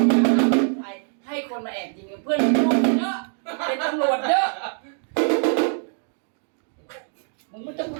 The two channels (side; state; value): left; silent; 55 dB below the other